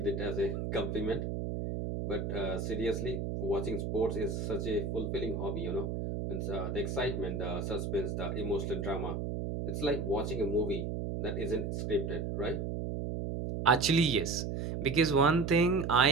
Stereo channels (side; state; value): right; noise; hum, 3 dB below the sound